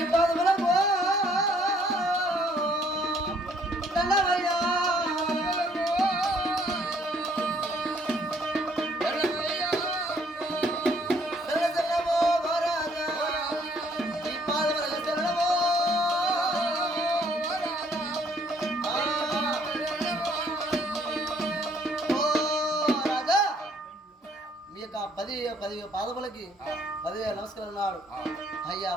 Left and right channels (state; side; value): normal; both; correlation 0.64